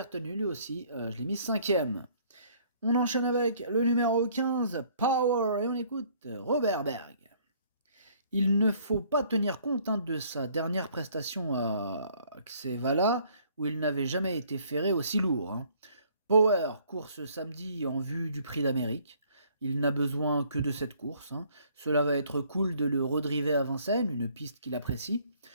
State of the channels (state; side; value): inverted; both; correlation -0.61